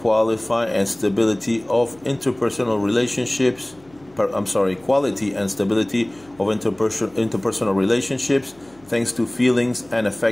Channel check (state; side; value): noise; left; hum, 29 dB below the sound